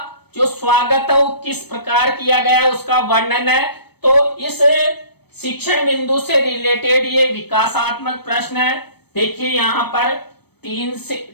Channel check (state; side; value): late; right; 0.97 ms